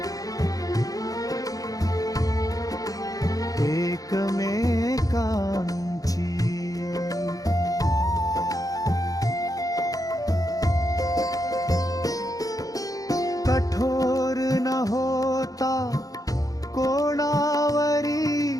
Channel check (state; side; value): late; right; 0.17 ms